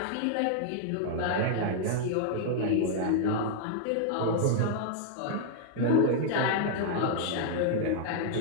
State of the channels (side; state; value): both; different; correlation -0.01